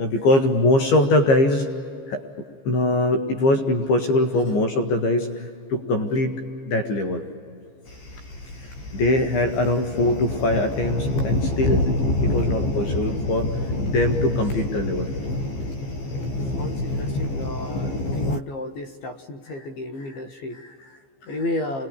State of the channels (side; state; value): right; late; 15 ms